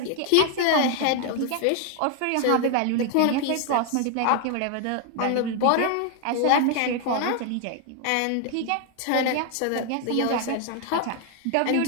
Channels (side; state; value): both; different; correlation 0.00